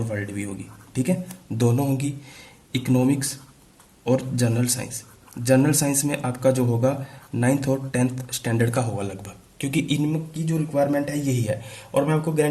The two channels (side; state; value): both; identical; correlation 1.00